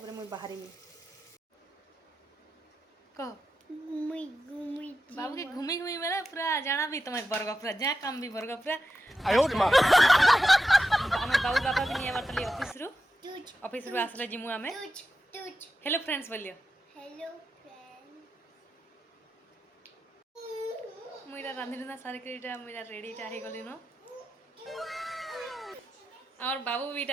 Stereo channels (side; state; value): both; normal; correlation 0.90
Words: मुई बाहरीमी कह बाबू के घूमी घूमी मेरा पूरा जाना भी तुम्हें बर्ग पूरा जहाँ काम भी बर्ग पूरा आमे बाबू बाबा भी नहीं बारतली ऑफिस रु आसले जिमु आमे हेलो फ्रेंड्स बोलियो हेलो फ्रेंड मुईटा रांधि रुंधा सारी के मुईटा रेडी टा हे गली नो और बाबू भी